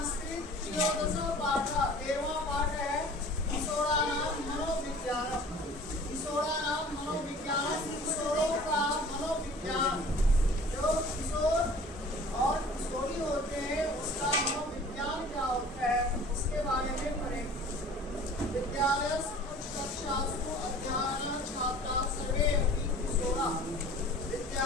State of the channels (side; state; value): both; normal; correlation 0.46